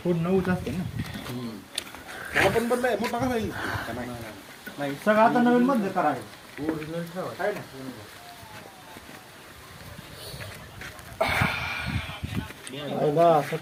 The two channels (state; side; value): identical; both; correlation 1.00